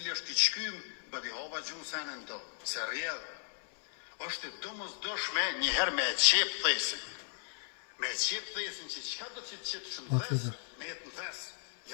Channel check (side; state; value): right; silent; digital silence